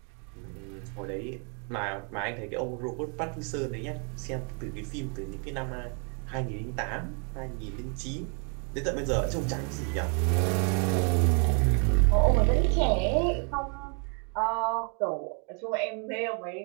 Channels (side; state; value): left; quieter; 39.5 dB